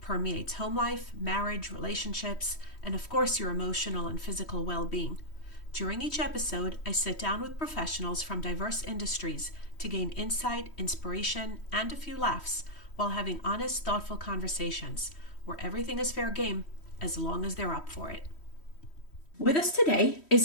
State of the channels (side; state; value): right; late; 3.1 ms